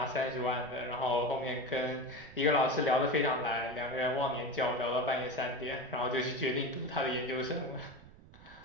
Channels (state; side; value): noise; right; rumble, 21 dB below the sound